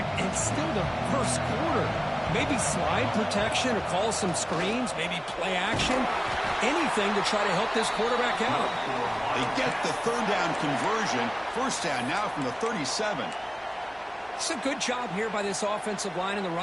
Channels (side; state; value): both; identical; correlation 1.00